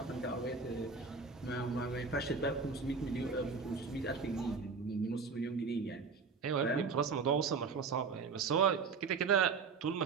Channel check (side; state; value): left; quieter; 5.0 dB